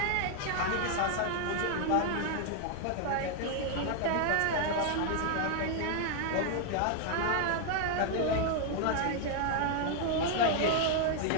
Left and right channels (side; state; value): both; different; correlation 0.00